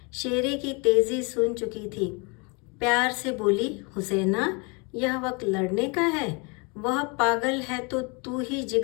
शेरे की तेज़ी सुन चुकी थी। प्यार से बोली, हुसैना, यह वक्त लड़ने का है। वह पागल है तो तू ही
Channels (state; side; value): quieter; right; 31.1 dB